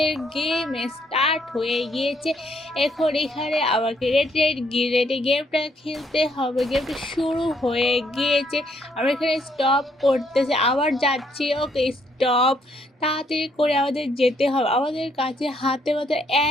গেম স্টার্ট হয়ে গিয়েছে। এখন এখানে আমাকে রেডে গেমটা খেলতে হবে। গেমটা শুরু হয়ে গিয়েছে, আমরা এখানে স্টপ করতেছে, আবার যাচ্ছি। ওকে স্টপ, তাড়াতাড়ি করে আমাদের যেতে হবে। আমাদের কাছে হাতে মাত্র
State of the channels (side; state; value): both; normal; correlation 0.70